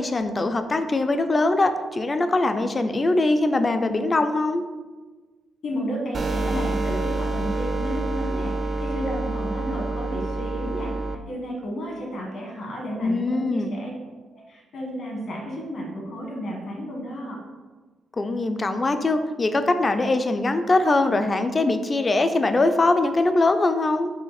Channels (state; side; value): normal; both; correlation 0.89